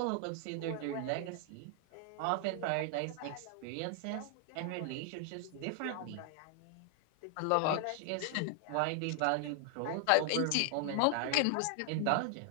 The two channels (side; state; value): both; different; correlation 0.00